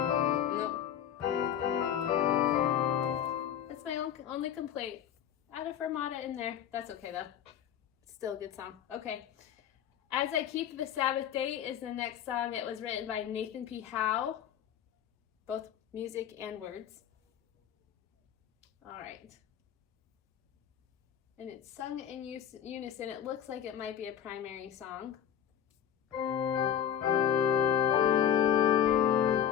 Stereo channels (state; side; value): quieter; right; 9.6 dB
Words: That's my only complaint. Add a fermata in there. That's okay though. Still a good song. Okay. As I Keep the Sabbath Day is the next song. It was written by Nathan P. Howe, both music and words. All right. And it's sung in unison. It looks like it might be a primary song.